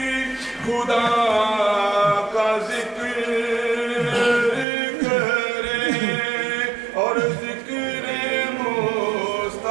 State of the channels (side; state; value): left; drops out; at 4.7 s